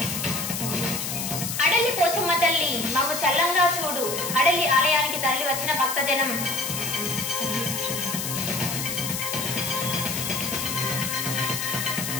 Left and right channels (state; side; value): noise; left; hiss, 3 dB below the sound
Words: అడలి పోచమ్మ తల్లి మమ్ము చల్లంగా చూడు, అడలి ఆలయానికి తరలి వచ్చిన భక్తజనం.